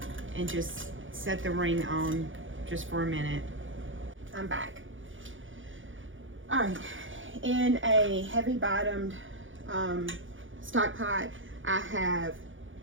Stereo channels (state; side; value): late; left; 0.57 ms